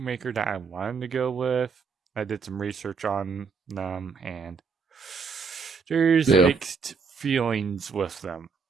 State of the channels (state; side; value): quieter; left; 5.4 dB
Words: that I wanted to go with, I did some research on them, and there's mixed feelings with them.